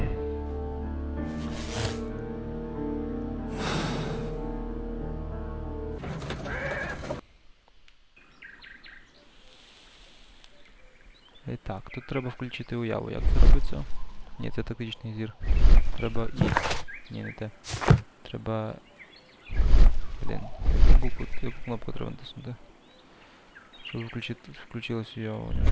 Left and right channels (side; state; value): both; identical; correlation 1.00